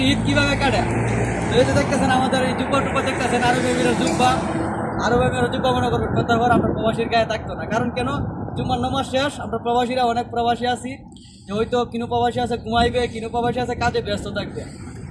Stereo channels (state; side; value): identical; both; correlation 1.00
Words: ঈদ কীভাবে কাটে, তো এই যে দেখতেছেন আমাদের এই জুব্বা টুব্বা দেখতেছেন, আরব এমিরের জুব্বা। আরব এমিরের জুব্বা মনে করবেন প্রত্যেকবার আমরা প্রবাসীর গায়ে থাকতো না, কারণ কেন, জুম্মার নামাজ শেষ আমরা প্রবাসীরা অনেক প্রবাসী আছি যে হয়তো কিনু প্রবাসী আছে ঘুমাইবে, কিনু প্রবাসী আছে কাজে ব্যস্ত থাকবে।